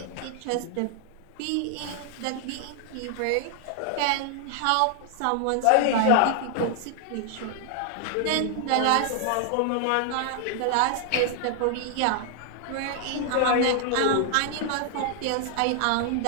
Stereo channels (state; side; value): different; both; correlation 0.00